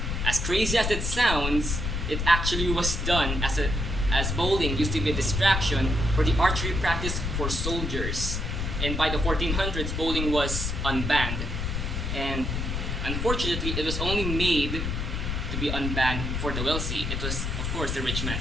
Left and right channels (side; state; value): left; noise; rumble, 2 dB below the sound